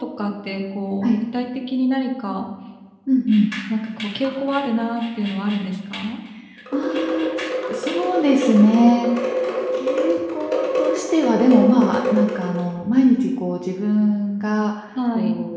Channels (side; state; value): both; identical; correlation 1.00